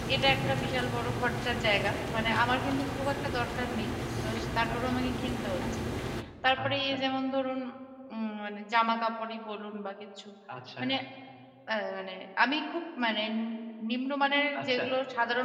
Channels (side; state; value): both; identical; correlation 1.00